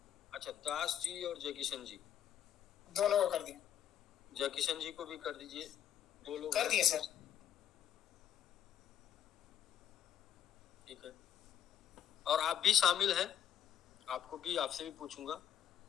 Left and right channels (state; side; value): quieter; right; 9.9 dB